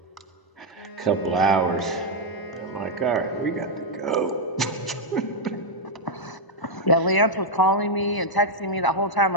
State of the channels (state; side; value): late; right; 1.0 ms